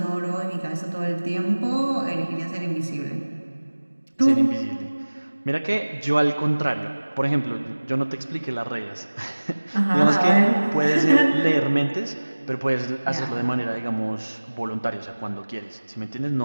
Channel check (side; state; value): both; inverted; correlation -1.00